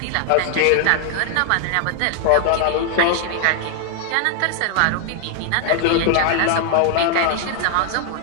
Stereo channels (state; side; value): different; both; correlation 0.00